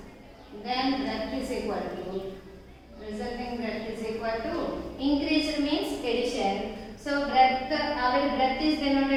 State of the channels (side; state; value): both; identical; correlation 1.00